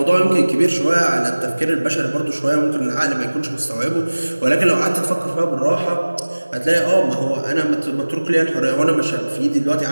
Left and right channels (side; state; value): both; inverted; correlation -1.00